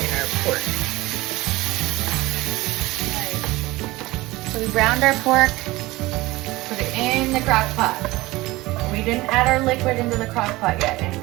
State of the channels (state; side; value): quieter; left; 19.8 dB